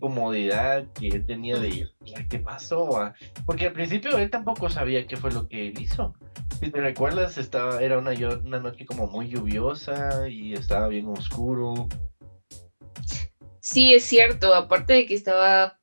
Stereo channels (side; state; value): both; inverted; correlation -1.00